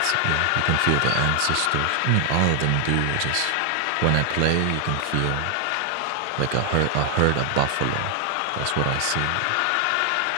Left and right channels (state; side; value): different; both; correlation 0.00